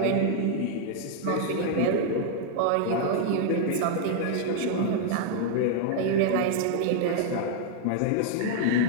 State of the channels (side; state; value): both; different; correlation 0.00